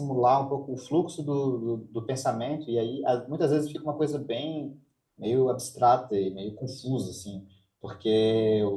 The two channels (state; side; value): identical; both; correlation 1.00